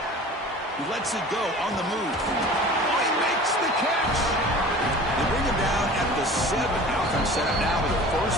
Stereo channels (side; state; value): both; normal; correlation 0.41